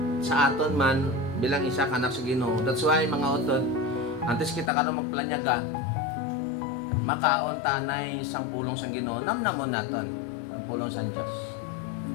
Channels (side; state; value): right; drops out; at 4.7 s